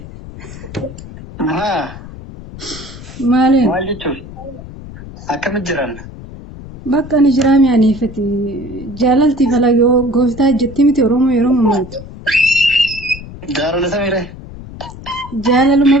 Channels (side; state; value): left; noise; rumble, 14 dB below the sound